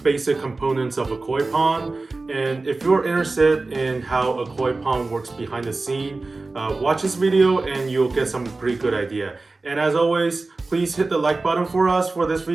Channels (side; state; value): left; quieter; 3.5 dB